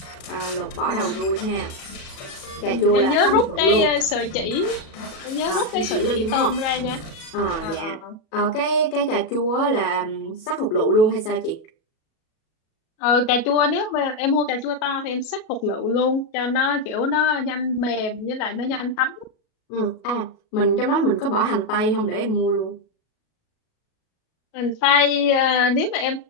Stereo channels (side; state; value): right; late; 37 ms